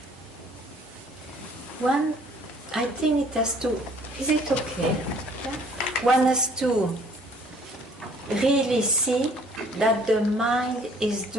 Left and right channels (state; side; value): normal; both; correlation 0.57